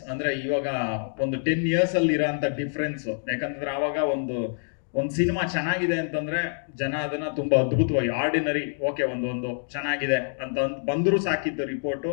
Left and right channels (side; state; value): right; silent; digital silence